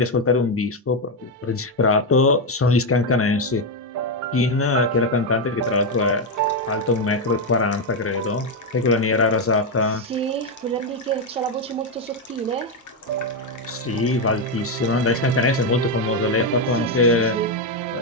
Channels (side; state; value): both; normal; correlation 0.05